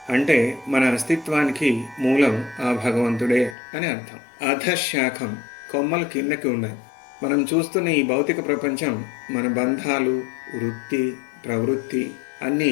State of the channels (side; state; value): right; drops out; at 3.6 s